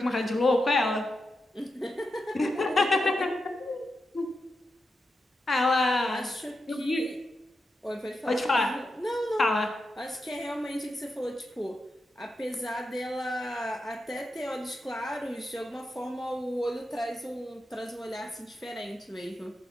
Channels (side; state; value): both; normal; correlation 0.88